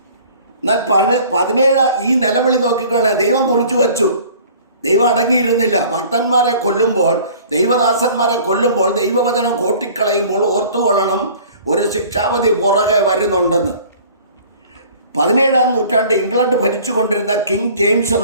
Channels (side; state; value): both; inverted; correlation -0.49